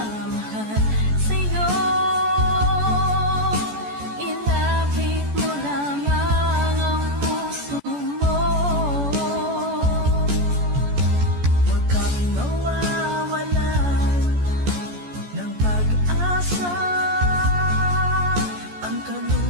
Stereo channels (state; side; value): late; left; 14 ms